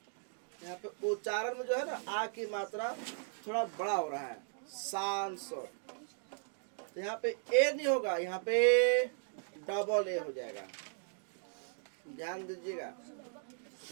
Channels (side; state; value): left; silent; digital silence